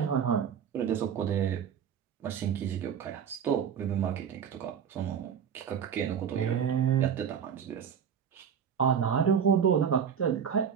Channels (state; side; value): quieter; left; 7.8 dB